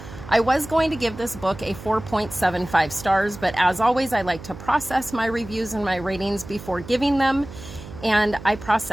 I was going to give this book a 4.75 stars, but as always, I like to process my reviews and my ratings before giving them, and I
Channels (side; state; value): right; noise; hum, 14 dB below the sound